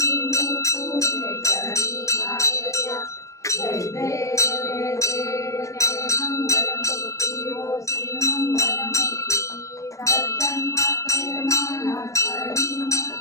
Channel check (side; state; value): right; late; 0.15 ms